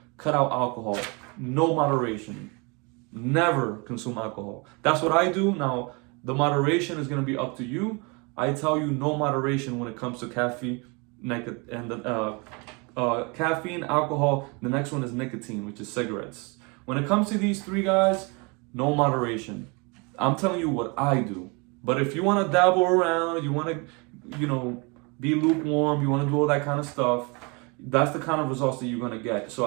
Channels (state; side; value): quieter; left; 30.1 dB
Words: cut out alcohol. No moderation. Never consume alcohol. That's what I do. Now, the moderation is going to be up to you. I tell you no moderation when it comes to caffeine, caffeine, alcohol. The next one is nicotine, which is cigarettes. When it comes to these three guys, no moderation. I'm telling you what I do. But if you want to dabble around, you want to, be lukewarm, you want to do all that kind of stuff, that's the kind of results that you're going to get. So